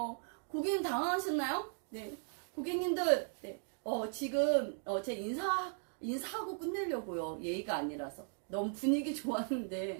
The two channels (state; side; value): silent; left; 53 dB below the other